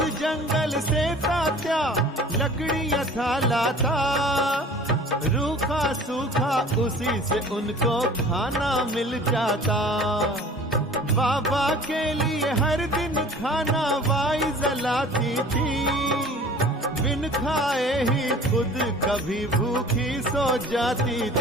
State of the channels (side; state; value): both; normal; correlation 0.45